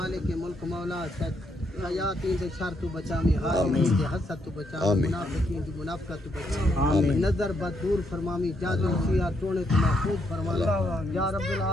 के मुल्क मौला यातीन से शर तू बचा में हासिल से हसद तू बचा मुनाफिकीन की मुनाफकत तू बचा नजर बदूर फरमामी जादू सिया टोने तू महफूज फरमा या रब्बुल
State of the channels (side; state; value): both; normal; correlation 0.76